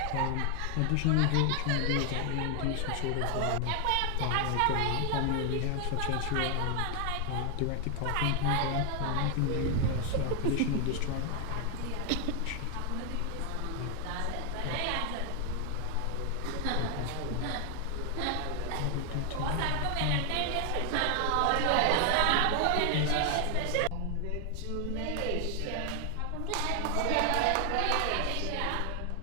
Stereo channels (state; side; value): different; both; correlation 0.00